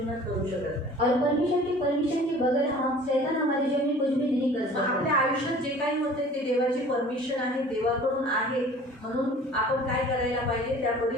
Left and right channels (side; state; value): both; normal; correlation 0.47